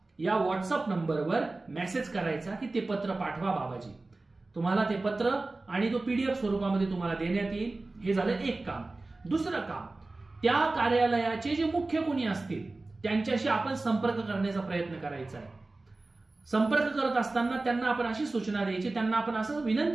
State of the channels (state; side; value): quieter; left; 3.2 dB